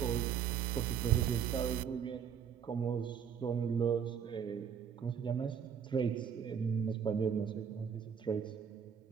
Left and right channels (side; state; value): left; quieter; 7.8 dB